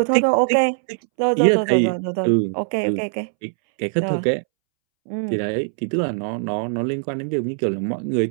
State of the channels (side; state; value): left; silent; 65 dB below the other